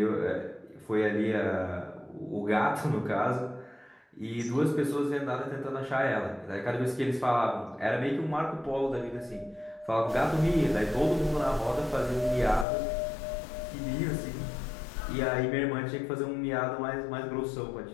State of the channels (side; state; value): right; drops out; at 12.7 s